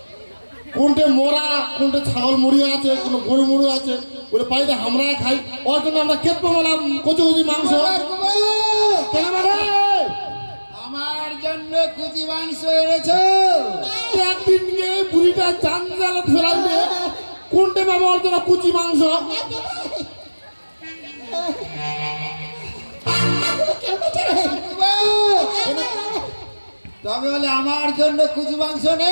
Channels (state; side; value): inverted; both; correlation -1.00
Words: কোনটে মোরা কোনটে ছাগল মুড়ি আছে কোনো গরু মুড়ি আছে ওরে পাইতে আমরা খাই ওর জন্য আমরা কেট পাবলাম কুচি কুচি মাংস কেন মানে আমার জন্য কুচি মাংস এনেছো একদিন নিয়ে বুড়িটা চান জ্বালা ফেলাইবে কোনটে পাবো ওর জন্য কুচি মাংস তবে বলে আমার জন্য কুচি মাংস